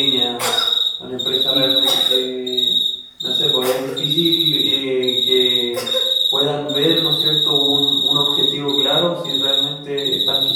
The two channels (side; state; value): both; identical; correlation 1.00